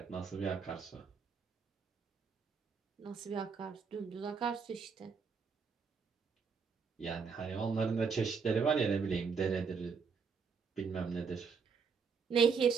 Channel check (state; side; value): quieter; left; 5.6 dB